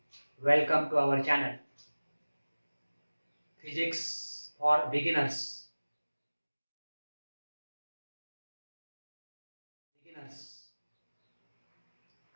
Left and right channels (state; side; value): inverted; both; correlation -1.00